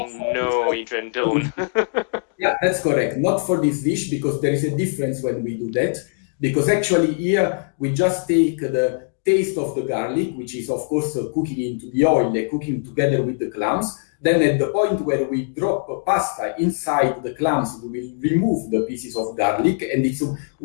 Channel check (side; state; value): right; silent; digital silence